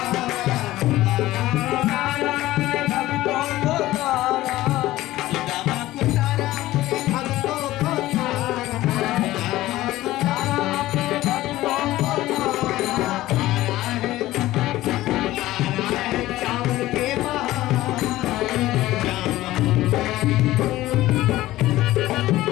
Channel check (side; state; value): right; quieter; 16.3 dB